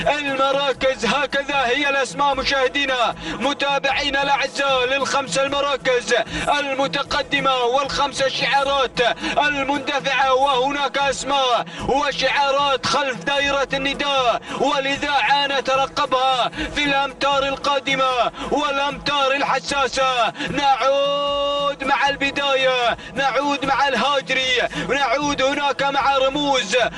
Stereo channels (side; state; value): both; identical; correlation 1.00